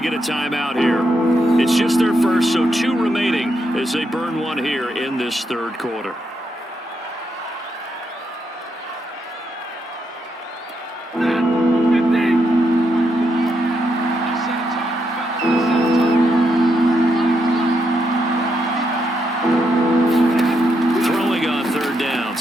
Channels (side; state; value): both; normal; correlation 0.80